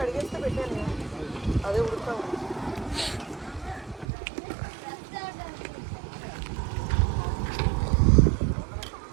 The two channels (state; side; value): drops out; left; at 4.0 s